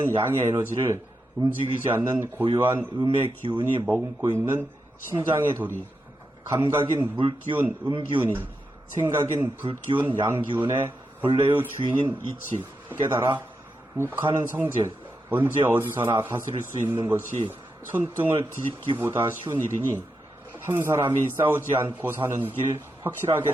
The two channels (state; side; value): normal; both; correlation 0.86